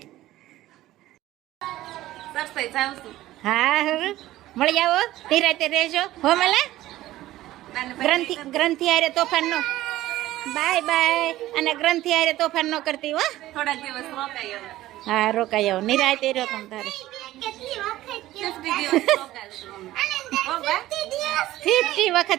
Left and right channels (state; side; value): quieter; left; 15.5 dB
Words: હા હવે મળી આવો ધીરાતે રહેજો હો મલા ગ્રંથિ હારે તોફાન નો બાય બાય અને ગ્રંથિ હારે તોફાન નો કરતી હો થોડાક દિવસ રોકાય હવે હા રોકાઈ આવો નિરાતે રહ્યો તમ તારે 50 દિવસ રોકાશું અમે. હો બા? 50